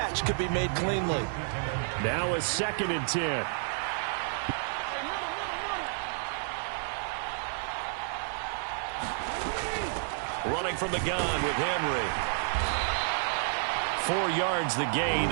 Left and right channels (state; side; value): silent; left; digital silence